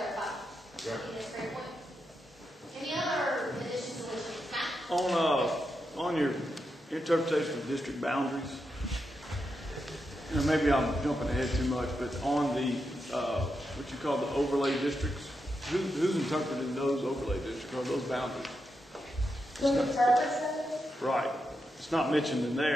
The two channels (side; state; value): both; normal; correlation 0.86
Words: Right. That's a great point. Any other additions, deletions? Matt? On your interpretation of district boundaries, you know, maybe I'm jumping ahead too much, but on the what you call the overlay districts, who's interpreting those overlay districts or those boundaries? Who interprets them? Right. It's not mentioned in